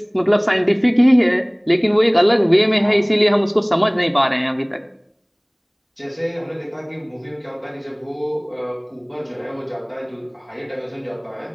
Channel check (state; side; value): identical; both; correlation 1.00